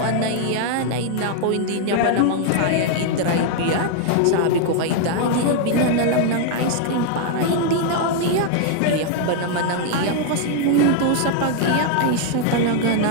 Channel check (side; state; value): both; different; correlation 0.00